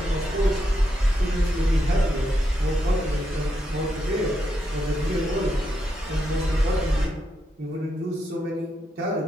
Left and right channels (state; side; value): normal; both; correlation 0.82